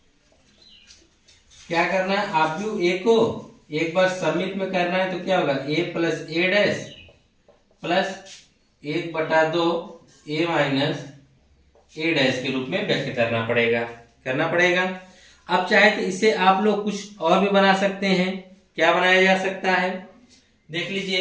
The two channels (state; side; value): identical; both; correlation 1.00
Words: क्या करना है, आव्यूह ए को एक बार सममित में करना है, तो क्या होगा, a plus A dash plus 1/2 a minus A dash के रूप में व्यक्त करना पड़ेगा। अब चाहे तो इसे आप लोग कुछ और भी बना सकते हैं। क्या बनाया जा सकता है, देख